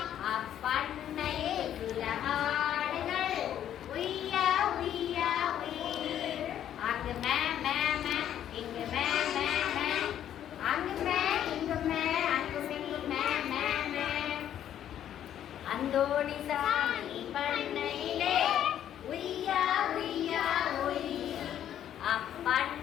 அப்பண்ணையில் சில ஆடுகள் உய்யா உய்யா உய். அங்கு மே மே மே இங்கு மே மே மே. அங்கு மே இங்கு மே அங்கும் இங்கு மே மே மே. அந்தோணிசாமி பண்ணையிலே உய்யா உய்யா உய்.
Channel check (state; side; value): quieter; right; 10.6 dB